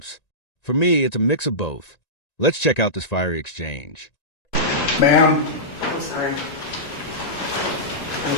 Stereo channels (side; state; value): right; late; 1.9 ms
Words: For me, it's a mix of both. Let's check out this fiery exchange. Ma'am. I'm sorry. I'm